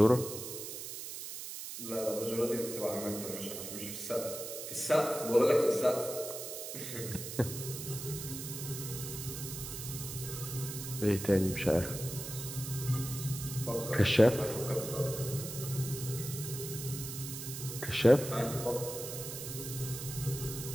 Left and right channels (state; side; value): noise; right; hiss, 8 dB below the sound